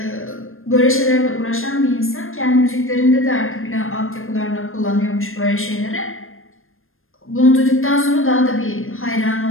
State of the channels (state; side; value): late; right; 0.60 ms